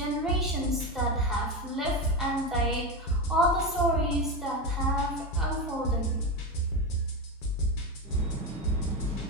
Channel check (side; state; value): both; normal; correlation 0.16